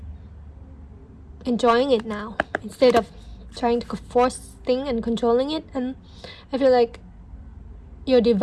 enjoying it now instead of trying to force things and controlling it. And I feel like your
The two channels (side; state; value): both; identical; correlation 1.00